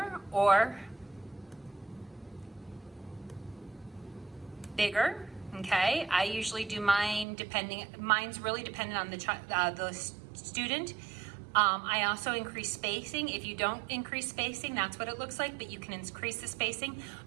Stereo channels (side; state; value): left; drops out; at 7.2 s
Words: or bigger. Okay, I usually do mine mine's really dependent on the student. I also increase spacing. If you don't increase spacing, that's what it looks like, but you can increase the spacing.